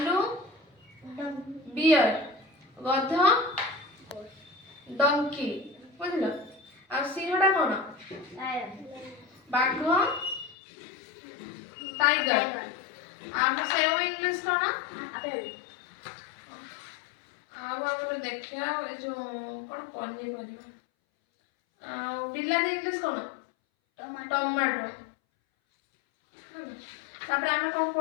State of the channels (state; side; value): drops out; right; at 10.6 s